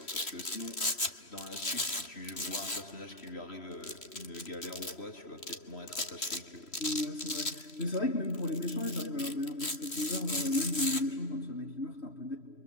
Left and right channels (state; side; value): late; right; 3.1 ms